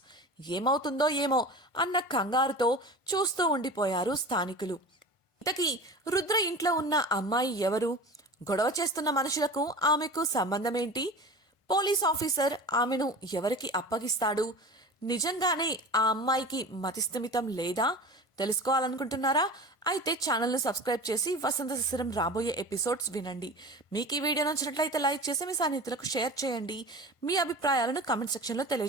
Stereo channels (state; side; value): late; right; 1.5 ms